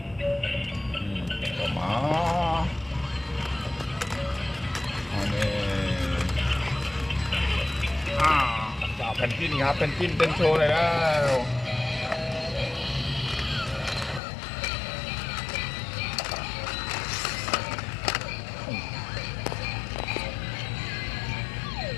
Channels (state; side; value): drops out; right; at 14.2 s